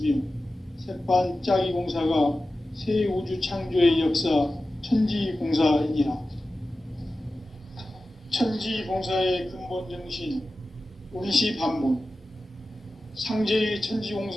새판짜기 공사가 새 우주 창조의 역사 천지공사이니라. 천지공사의 근본 정신, 운시반본. 상제의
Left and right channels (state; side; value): normal; both; correlation 0.94